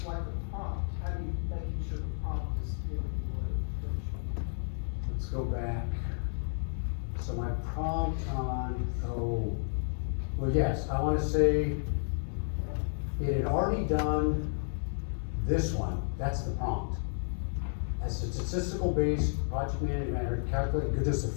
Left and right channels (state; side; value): silent; right; digital silence